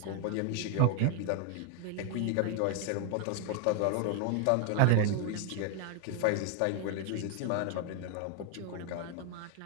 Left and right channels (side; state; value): both; different; correlation 0.00